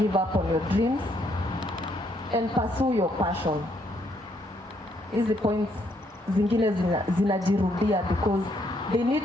up on your dreams. And pursue your passion. Hizi points zingine zinajirudia because they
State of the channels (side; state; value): both; normal; correlation 0.72